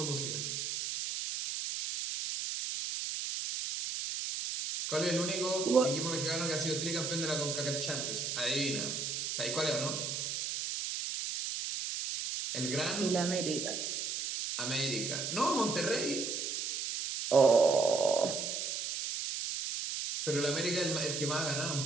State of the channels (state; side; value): noise; right; hiss, 3 dB below the sound